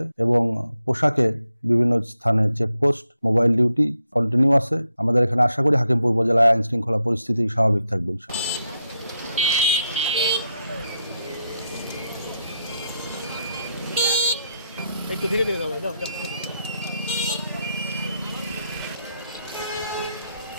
এবং পোশাকে বিভিন্ন স্থানে চেকপোস্ট, মোবাইল ডিউটি কন্টিনিউ আছে। আমাদের এখানে আশা করি হাকিমপুর উপজেলায় আইন শৃঙ্খলা পরিস্থিতি স্বাভাবিক থাকবে। একটু ধীরে ধীরে যাবো, যাও যাও।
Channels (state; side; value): inverted; both; correlation -0.82